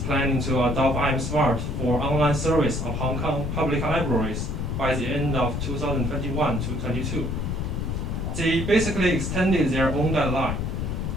to adopt iAMSmart for online service of Hong Kong public libraries by the end of 2021 to 22. They basically extended their own deadline.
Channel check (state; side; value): noise; left; rumble, 2 dB below the sound